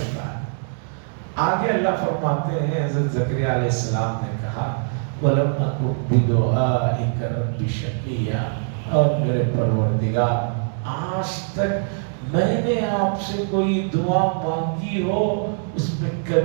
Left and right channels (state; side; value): silent; left; digital silence